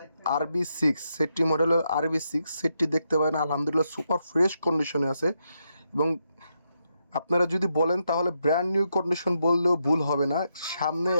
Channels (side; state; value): both; inverted; correlation -0.82